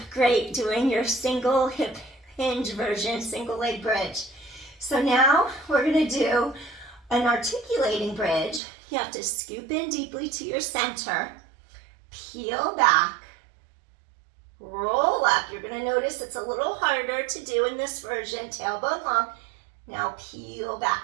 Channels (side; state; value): left; drops out; at 8.6 s